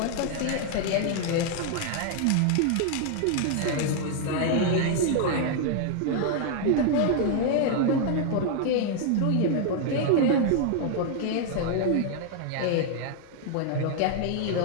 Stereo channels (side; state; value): both; different; correlation 0.00